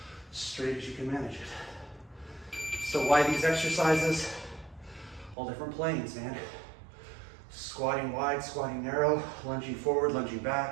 straight as you can manage it. So why these exercises? All different planes, man. Squatting wide, squatting narrow, lunging forward, lunging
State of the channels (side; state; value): left; drops out; at 5.4 s